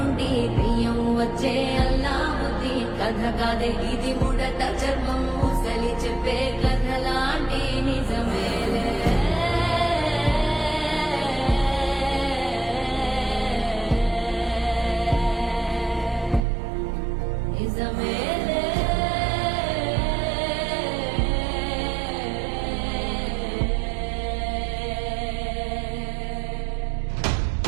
బియ్యం వచ్చే అల్లావుద్దీన్ కథ కదే ఇది ముడత చర్మం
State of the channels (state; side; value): drops out; left; at 16.4 s